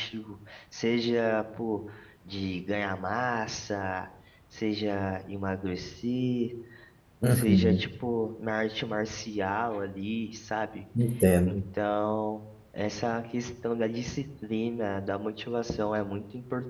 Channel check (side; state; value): both; identical; correlation 1.00